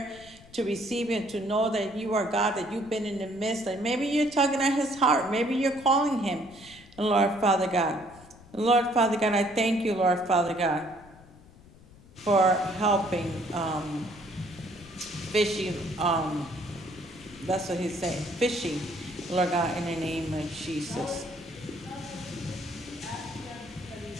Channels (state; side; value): noise; left; rumble, 22 dB below the sound